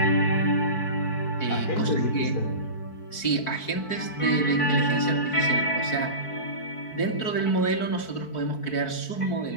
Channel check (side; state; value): right; late; 4.6 ms